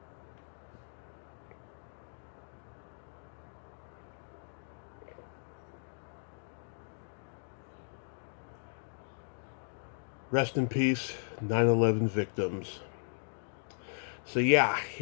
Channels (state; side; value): silent; right; digital silence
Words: Rest in peace, 9/11 victims. So yeah,